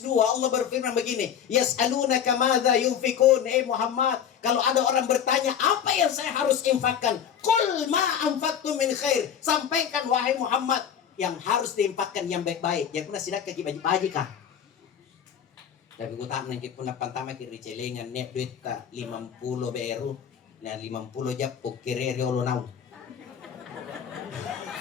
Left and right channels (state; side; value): quieter; right; 8.5 dB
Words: 2 Allah berfirman begini, yas'alunaka madza yunfikun, Muhammad, kalau ada orang bertanya apa yang saya harus infakkan, qul ma anfaqtum min khair, sampaikan wahai Muhammad yang harus diinfakkan yang baik-baik. Ya kuna sidak kaki baji-baji kah? Tapi ku tak nangkit pun pantama kiri celengan nek duit ka 50 beru na 50 japok kiri ulo nau.